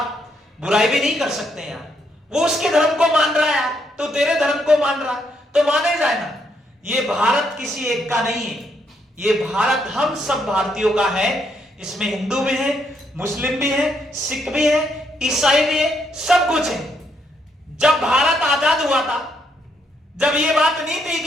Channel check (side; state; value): both; normal; correlation 0.75